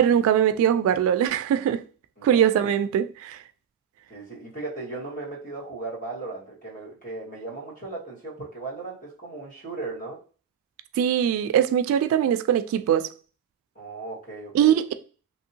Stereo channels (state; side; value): quieter; left; 8.9 dB